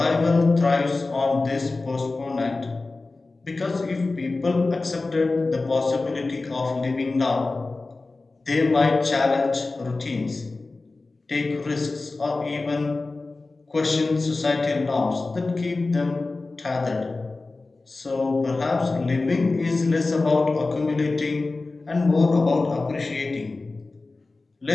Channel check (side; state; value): right; quieter; 3.5 dB